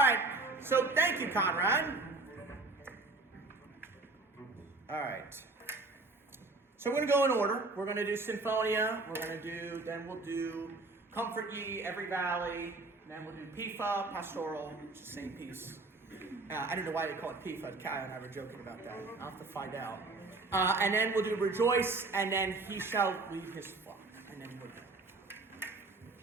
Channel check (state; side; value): quieter; left; 3.3 dB